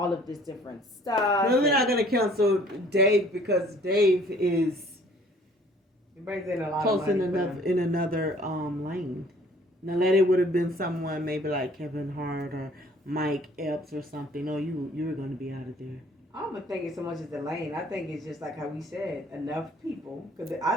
of this different stuff. No, they're not going to cancel Dave, because Dave is close in another lane. Now, that it would have been someone maybe like Kevin Hart or Mike Epps or something. No, you were going to be out of there. I don't think it's so much as the lane. I think it's just like how we said, enough people. Because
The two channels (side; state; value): both; normal; correlation 0.55